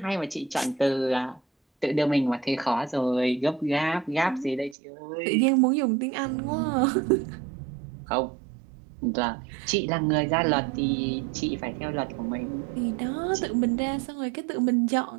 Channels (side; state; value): left; drops out; at 4.8 s